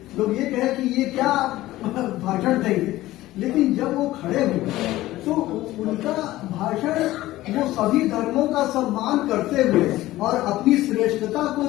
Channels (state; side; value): quieter; right; 16.3 dB